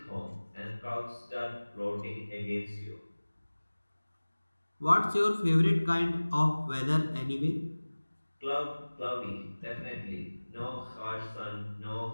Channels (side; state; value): both; inverted; correlation -1.00